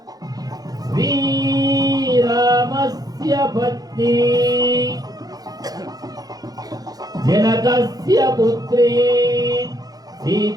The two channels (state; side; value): late; left; 0.19 ms